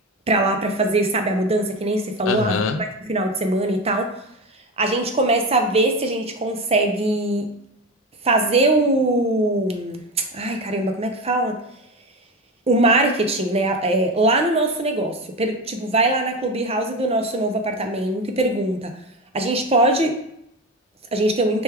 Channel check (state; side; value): normal; both; correlation 0.21